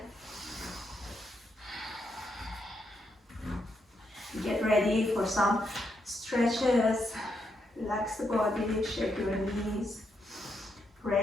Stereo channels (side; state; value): both; normal; correlation 0.80